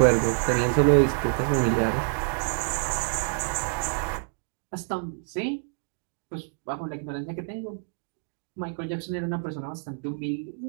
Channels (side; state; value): left; silent; digital silence